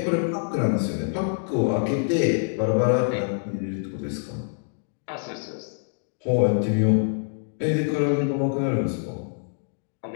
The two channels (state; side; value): silent; right; digital silence